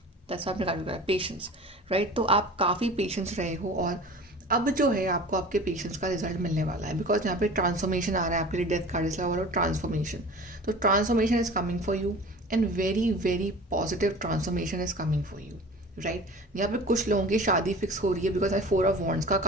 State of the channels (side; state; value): both; normal; correlation 0.39